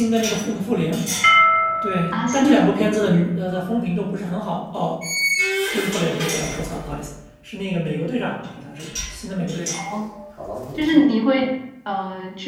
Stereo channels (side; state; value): both; identical; correlation 1.00